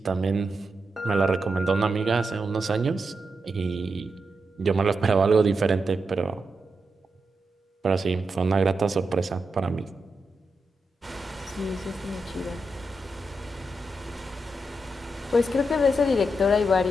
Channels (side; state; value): both; normal; correlation 0.86